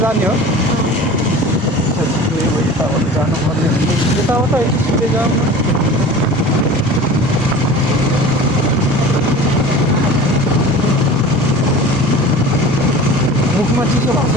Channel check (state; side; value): normal; both; correlation 0.39